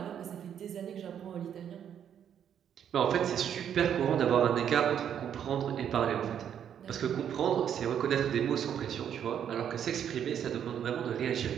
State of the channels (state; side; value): quieter; left; 9.1 dB